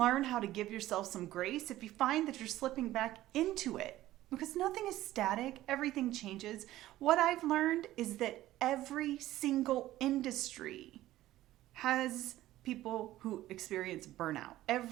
how to give yourself some grace if you find that you're slipping back into it. Because nothing is static, everything changes. What I've learned is that every single industry has people who experience burnout.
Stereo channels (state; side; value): quieter; left; 15.1 dB